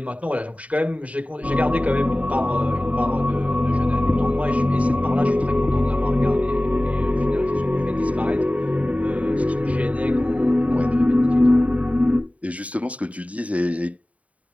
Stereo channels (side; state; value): left; late; 0.068 ms